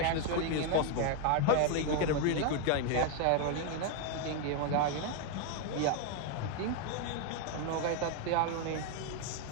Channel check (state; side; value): different; both; correlation 0.01